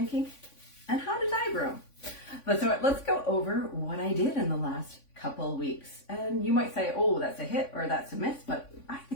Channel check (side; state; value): right; late; 3.5 ms